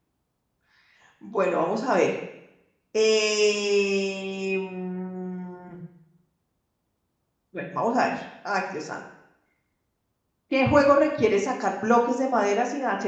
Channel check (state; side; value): identical; both; correlation 1.00